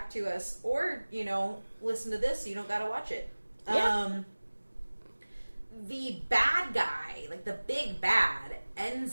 to us, or, you know, listen to this so you don't got to watch it. Yeah. The bad guy, like, the big bad, ends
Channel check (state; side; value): inverted; both; correlation -1.00